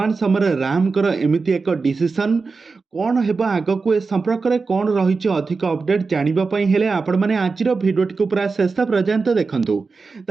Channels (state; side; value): quieter; left; 4.4 dB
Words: ସମୟରେ ରାମଙ୍କର ଏମିତି ଏକ ଡିସିସନ୍ କ'ଣ ହେବ ଆଗକୁ, ଏ ସମ୍ପର୍କରେ କ'ଣ ରହିଛି ଅଧିକ ଅପଡେଟ୍ ଜାଣିବା ପାଇଁ ହେଲେ ଆପଣମାନେ ଆଜିର ଭିଡ଼ିଓଟିକୁ ପୁରା ଶେଷ ପର୍ଯ୍ୟନ୍ତ ଦେଖନ୍ତୁ।